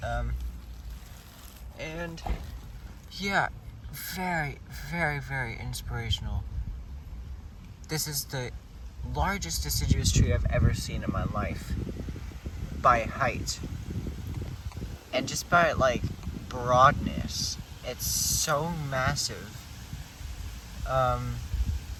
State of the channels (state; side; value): identical; both; correlation 1.00